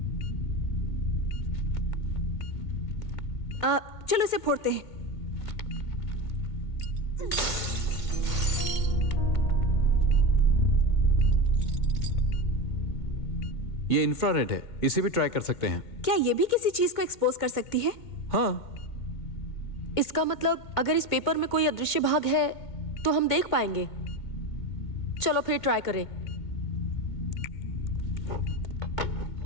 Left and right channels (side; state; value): right; late; 2.1 ms